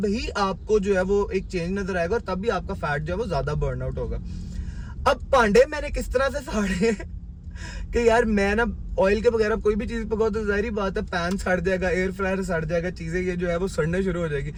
ही आपको जो है वो एक चेंज नजर आएगा, और तब भी आपका फैट जो है वो ज्यादा बर्न आउट होगा। अब भांडे मैंने किस तरह से साड़े हैं कि यार मैं ना ऑयल के बगैर कोई भी चीज पकाओ तो जाहिर बात है पैन सड़ जाएगा, एयर फ्रायर सड़ जाएगा, चीजें ये जो है वो सड़ने शुरू हो जाएगी।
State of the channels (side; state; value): both; identical; correlation 1.00